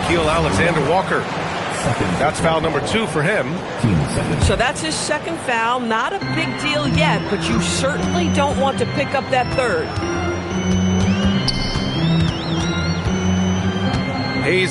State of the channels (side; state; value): both; identical; correlation 1.00